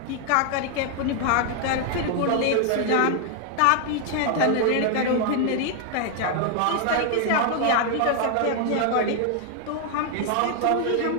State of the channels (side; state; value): both; different; correlation 0.00